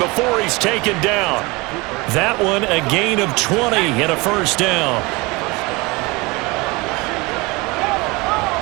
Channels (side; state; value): left; quieter; 24.8 dB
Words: before he's taken down. That one a gain of 20 and a first down.